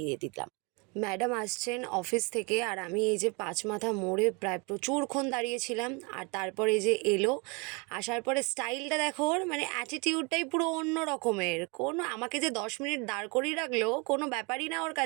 দিলাম। ম্যাডাম আসছেন অফিস থেকে, আর আমি এই যে পাঁচ মাথা মোড়ে প্রায় প্রচুরক্ষণ দাঁড়িয়েছিলাম। আর তারপরে এই যে এলো, আসার পরে স্টাইলটা দেখো ওর, মানে অ্যাটিটিউডটাই পুরো অন্য রকমের। কোনো আমাকে যে 10 মিনিট দাঁড় করিয়ে রাখলো, কোনো ব্যাপারই না ওর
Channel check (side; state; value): left; quieter; 30.3 dB